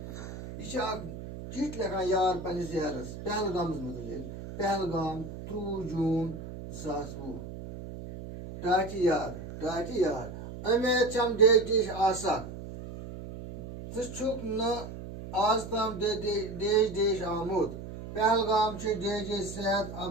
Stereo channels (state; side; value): noise; right; hum, 10 dB below the sound